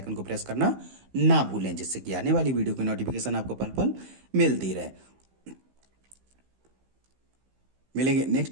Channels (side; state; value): left; late; 15 ms